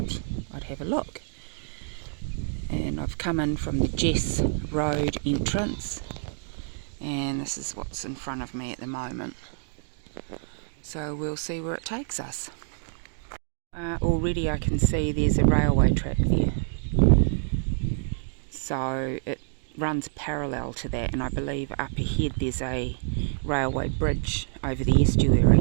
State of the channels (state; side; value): silent; left; digital silence